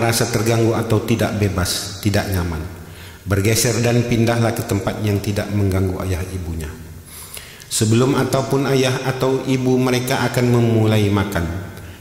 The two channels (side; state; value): both; identical; correlation 1.00